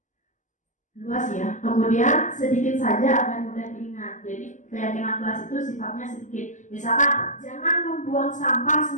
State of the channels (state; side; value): late; right; 0.36 ms